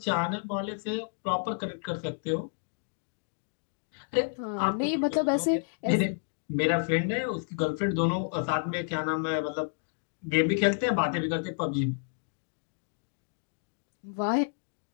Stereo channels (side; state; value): right; silent; digital silence